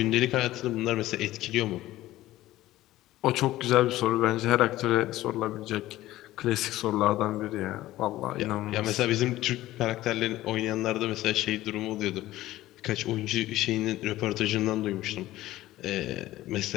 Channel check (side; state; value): right; quieter; 15.7 dB